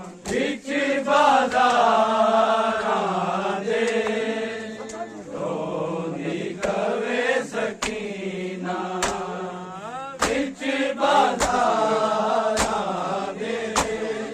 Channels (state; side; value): identical; both; correlation 1.00